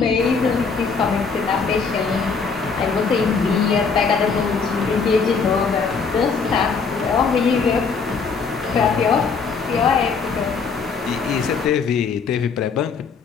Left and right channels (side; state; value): right; quieter; 5.2 dB